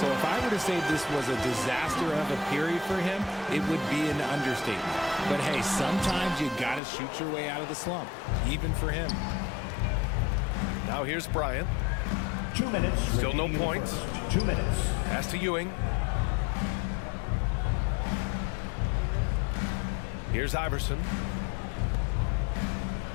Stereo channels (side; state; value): right; drops out; at 6.8 s